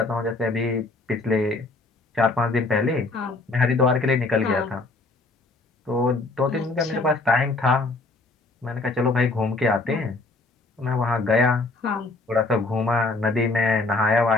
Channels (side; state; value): right; quieter; 3.3 dB